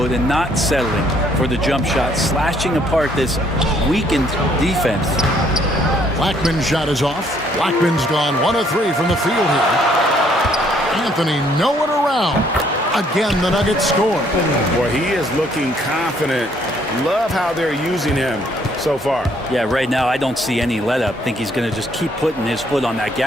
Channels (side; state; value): both; normal; correlation 0.65